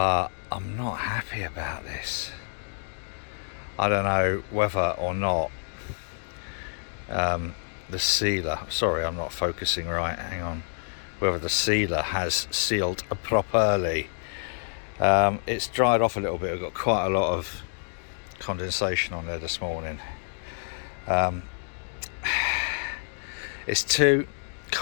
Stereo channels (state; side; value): silent; right; digital silence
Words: I'm not happy about this. I don't know whether or not the sealer, sorry I'm not focusing right, hang on, whether the sealer has sealed properly. It's dried off a little bit. I've got quite a lot of condensation on there this morning. It's too